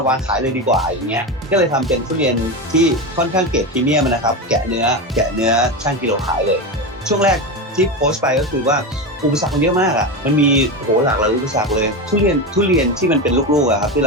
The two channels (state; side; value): normal; both; correlation 0.18